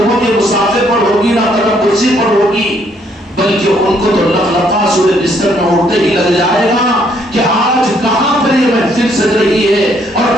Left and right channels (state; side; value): normal; both; correlation 0.69